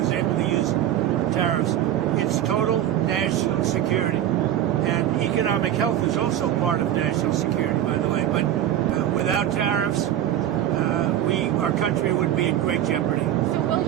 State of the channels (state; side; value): quieter; left; 11.6 dB